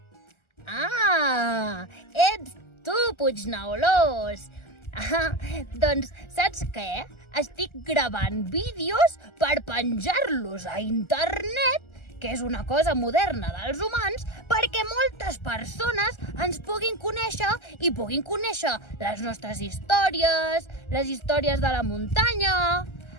Ah, ets tu, Puigneulós! Doncs saps què? Estic gravant vídeos per penjar-los a internet, que és una cosa moderna dels humans, perquè moltes persones ens puguin conèixer i puguin conèixer les nostres històries, les històries de la muntanya.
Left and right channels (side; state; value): right; late; 1.4 ms